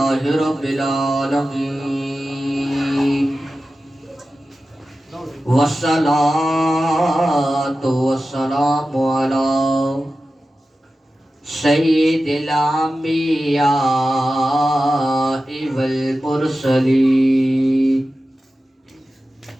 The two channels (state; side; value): normal; both; correlation 0.94